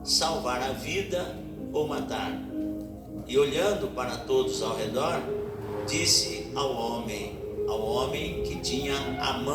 Salvar a vida ou matar? E olhando para todos ao redor, disse ao homem que tinha a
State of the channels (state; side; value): identical; both; correlation 1.00